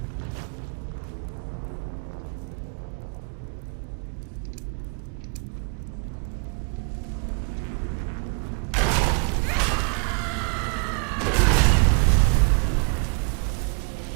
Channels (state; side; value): quieter; left; 36.4 dB